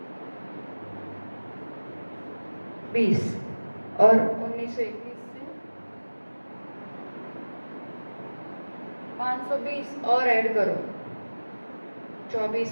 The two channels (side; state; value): both; inverted; correlation -1.00